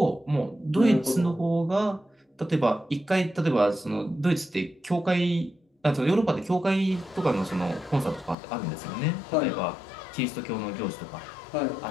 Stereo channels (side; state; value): right; drops out; at 8.3 s